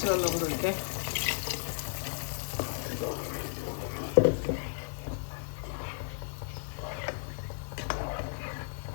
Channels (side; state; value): right; silent; digital silence